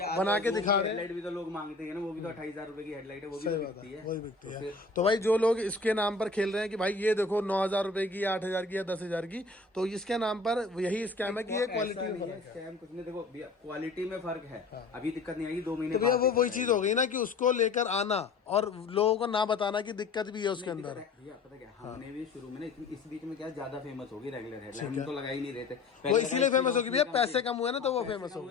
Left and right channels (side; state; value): right; quieter; 3.9 dB